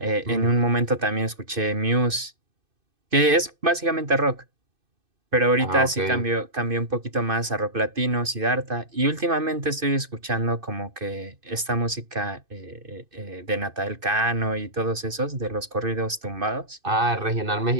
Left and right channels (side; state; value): left; late; 2.6 ms